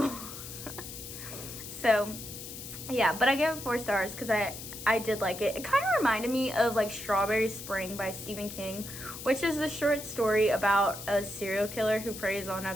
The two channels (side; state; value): left; noise; hiss, 11 dB below the sound